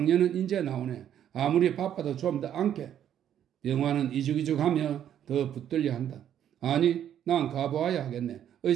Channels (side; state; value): left; quieter; 10.1 dB